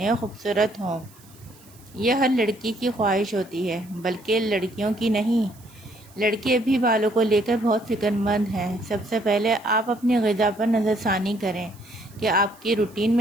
اور خوبصورت ہوں۔ یہ ہر لڑکی کی خواہش ہوتی ہے، بلکہ لڑکیوں کی نہیں۔ لڑکے بھی بالوں کو لے کر بہت فکر مند ہیں۔ سب سے پہلے آپ اپنی غذا پر نظر ثانی کریں کہ آپ کی روٹین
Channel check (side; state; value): right; noise; hiss, 26 dB below the sound